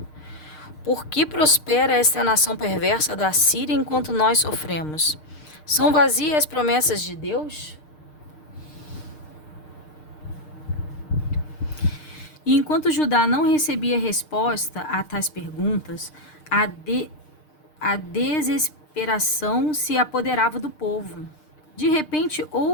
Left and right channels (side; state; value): right; late; 6.5 ms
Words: Por que prospera esta nação perversa da Síria enquanto nós sofremos? São vazias as promessas de Deus? E enquanto Judá não recebia resposta a tais perguntas, a desesperação se apoderava do povo. De repente,